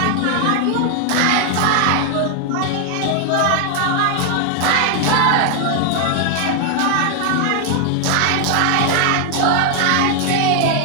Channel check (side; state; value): both; different; correlation 0.00